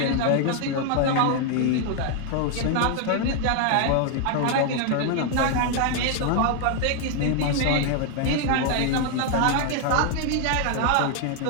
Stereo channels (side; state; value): both; different; correlation 0.00